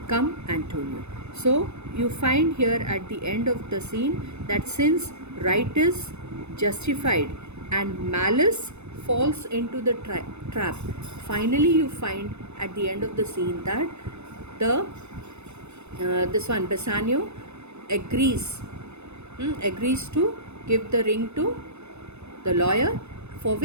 Come, Antonio. So you find here at the end of the scene that since right is justified and malice falls into the trap, finally you find at the end of the scene that the this one Bassanio agrees to give the ring to the lawyer, for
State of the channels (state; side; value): late; left; 0.81 ms